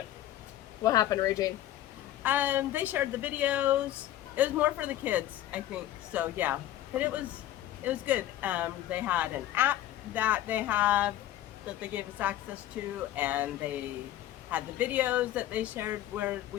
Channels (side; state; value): right; quieter; 13.2 dB